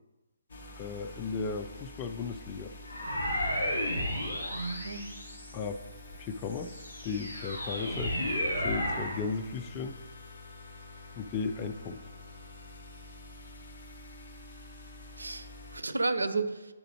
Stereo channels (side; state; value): both; inverted; correlation -0.64